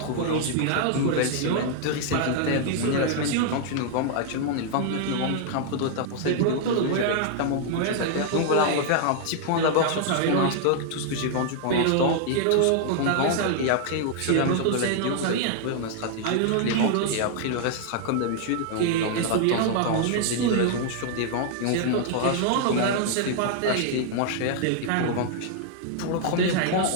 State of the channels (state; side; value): different; both; correlation -0.01